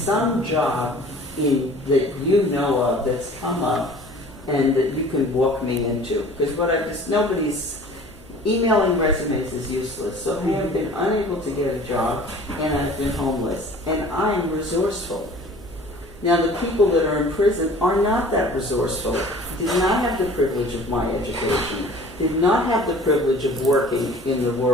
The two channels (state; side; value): normal; both; correlation 0.47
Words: job that you know of that's come up and that you can walk me into. Because nobody's emailing resumes is useless. So I have been unable to get a job, and I've been homeless, and I'm resourceful. Now, the people that are in prison are not that resourceful, did not have the privilege of my education, did not have the privilege of working in the